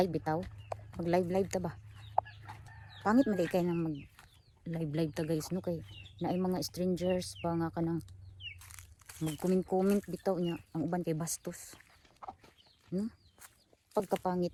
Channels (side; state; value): both; identical; correlation 1.00